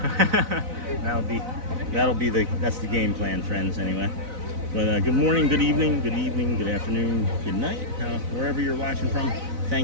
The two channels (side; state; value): left; late; 4.0 ms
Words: That's the game plan, friends, anyway. But good morning, good evening, good afternoon, good night, wherever you're watching from.